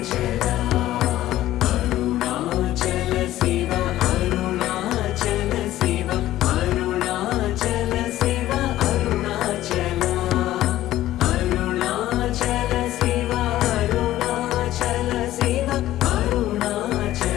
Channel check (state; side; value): quieter; right; 14.4 dB